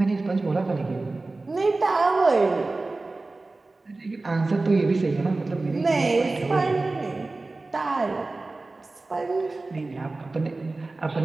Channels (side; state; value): left; quieter; 3.3 dB